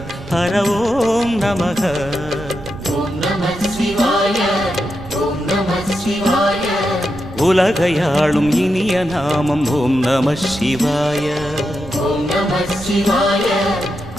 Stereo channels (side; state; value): right; noise; rumble, 14 dB below the sound